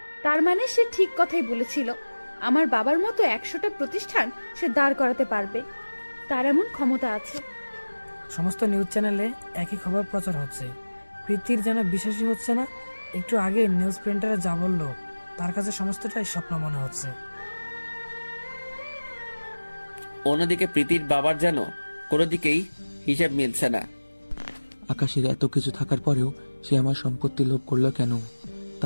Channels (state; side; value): inverted; both; correlation -1.00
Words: তার মানে সে ঠিক কথাই বলেছিল, আমার বাবার মতো 100টা প্রতিষ্ঠান সে দাঁড় করাতে পারবে, তার এমন ক্ষমতা আছে। সমস্ত নিউজ চ্যানেলে একই খবর প্রচার হচ্ছে। প্রীতির যেন বিশ্বাসই হচ্ছে না। একটু আগে নিউজ প্রিন্টারে যা বললো তার কাছে সমস্তটাই স্বপ্ন মনে হচ্ছে। অন্যদিকে প্রীতির বাবার যেন কোনো দিকেই হিসেব মিলছে না। আকাশের এত কিছু থাকার পরেও সে আমার সম্পত্তি লোভ করলো কেন?